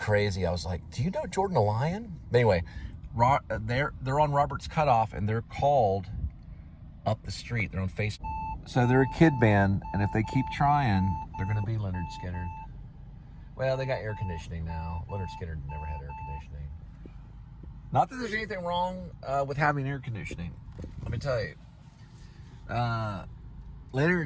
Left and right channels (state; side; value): identical; both; correlation 1.00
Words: I was like, do you know Jordan the Lion? But anyway, they're on Robert's Cutoff, and they're called Up the Street. They're on Facebook. So they're a kid band, and if they keep trying, they're going to be Leonard Skinner. Well, they got air conditioning now. Leonard Skinner never had air conditioning. Not that there's anything wrong with having air conditioning. Let me tell you.